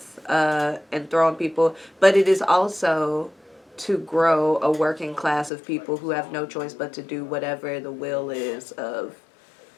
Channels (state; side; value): drops out; right; at 5.5 s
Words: and throwing people. But it is also to grow a working class of people who have no choice but to do whatever the will is of,